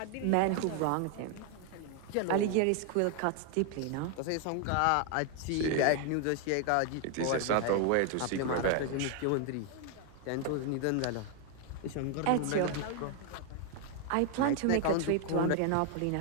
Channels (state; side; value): different; both; correlation 0.00